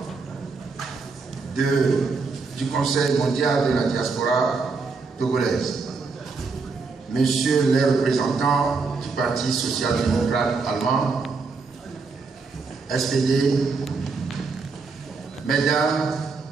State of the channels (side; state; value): left; quieter; 4.4 dB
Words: du Conseil mondial de la diaspora togolaise, Messieurs les représentants du Parti social-démocrate allemand, SPD, Mesdames,